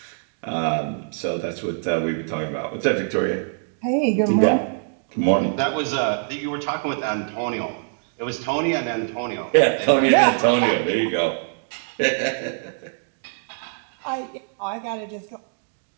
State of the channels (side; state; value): left; silent; digital silence